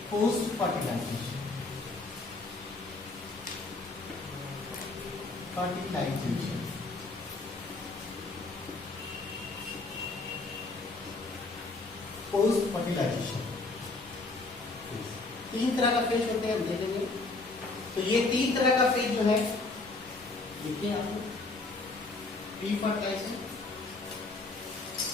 पोस्ट फर्टिलाइजेशन। तीन तरह का फेज होते हैं, हम देखेंगे। तो ये तीन तरह का फेज जो है देखिए आप लोग, प्री फर्टिलाइजेशन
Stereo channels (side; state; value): right; quieter; 3.4 dB